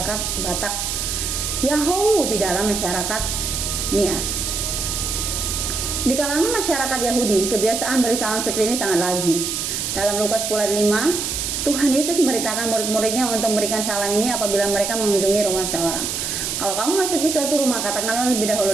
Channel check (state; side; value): noise; right; hiss, 2 dB below the sound